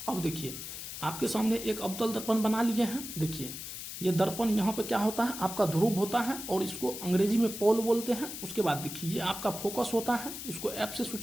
अब देखिए आपके सामने एक अवतल दर्पण बना लिए हैं। देखिए ये दर्पण यहाँ पे क्या होता है, आपका ध्रुव होता है और इसको अंग्रेजी में पोल बोलते हैं। उसके बाद देखिए ये आपका फोकस होता है, इसको एफ से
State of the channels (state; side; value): noise; left; hiss, 8 dB below the sound